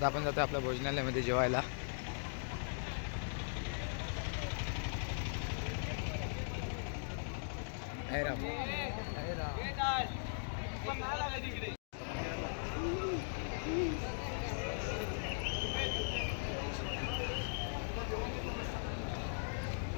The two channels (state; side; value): silent; right; digital silence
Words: आपण जातोय आपल्या भोजनालयामध्ये जेवायला.